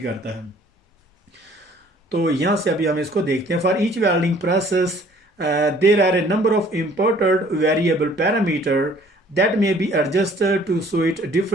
करता है। तो यहाँ से अभी हम इसको देखते हैं। For each welding process there are a number of imported variable parameter that may be adjusted to suit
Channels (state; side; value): normal; both; correlation 0.56